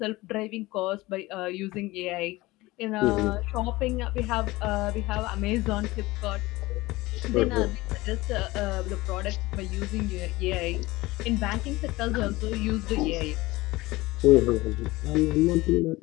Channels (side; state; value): right; quieter; 20.1 dB